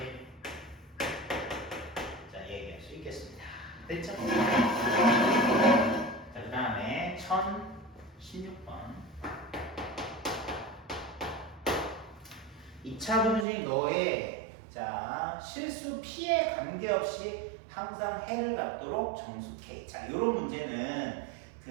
자, 얘기할 수 있겠습니다. 됐죠? 자, 그 다음에 1016번. 2차 분식 너의 자 실수 P에 관계없이 항상 해를 갖도록 정수K. 자, 이런 문제는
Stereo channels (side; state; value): left; drops out; at 13.5 s